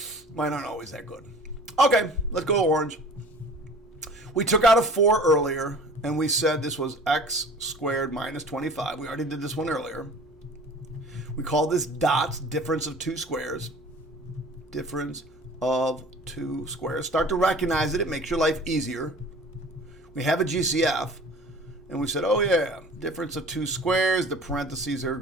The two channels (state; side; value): normal; both; correlation 0.44